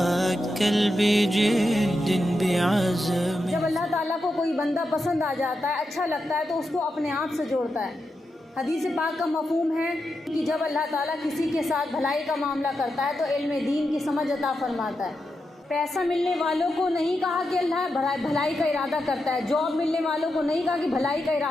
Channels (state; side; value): normal; both; correlation 0.87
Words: بجد بعزم. جب اللہ تعالیٰ کو کوئی بندہ پسند آ جاتا ہے، اچھا لگتا ہے، تو اس کو اپنے آپ سے جوڑتا ہے. حدیث پاک کا مفہوم ہے کہ جب اللہ تعالیٰ کسی کے ساتھ بھلائی کا معاملہ کرتا ہے تو علم دین کی سمجھ عطا فرماتا ہے. پیسہ ملنے والوں کو نہیں کہا کہ اللہ بھلائی کا ارادہ کرتا ہے، جاب ملنے والوں کو نہیں کہا کہ بھلائی کا